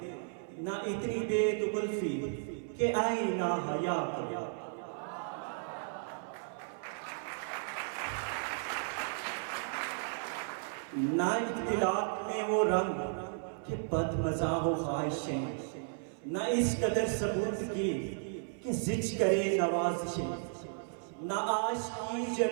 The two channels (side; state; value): left; silent; 55 dB below the other